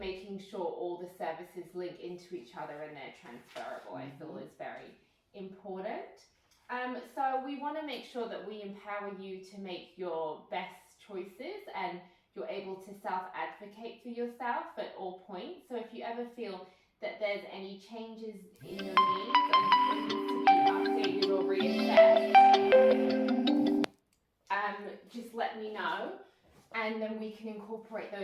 sure all the services link into each other and they're transferable, I feel is very important. So we want to make sure that we empower you to make your best choices and you're able to self-advocate for yourself at all points. So if you ever feel that there's any changes in your needs and needs to be updated or reassessed, just let me know. And then we can incorporate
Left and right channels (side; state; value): both; identical; correlation 1.00